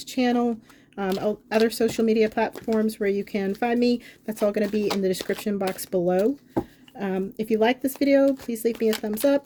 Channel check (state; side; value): identical; both; correlation 1.00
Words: channel, other social media platforms where you can find me, that's all going to be in the description box below. If you like this video, please leave me a thumbs